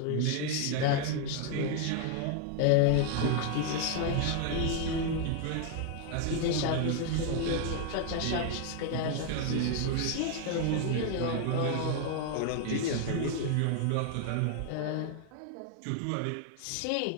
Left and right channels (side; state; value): both; different; correlation 0.00